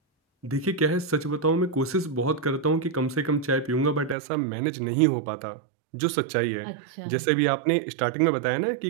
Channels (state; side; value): drops out; left; at 4.2 s